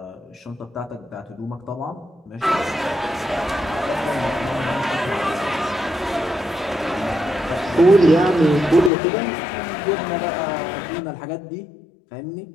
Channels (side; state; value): right; drops out; at 8.9 s